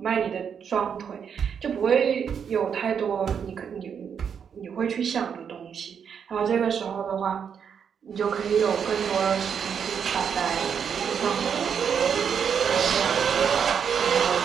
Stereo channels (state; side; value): quieter; left; 7.3 dB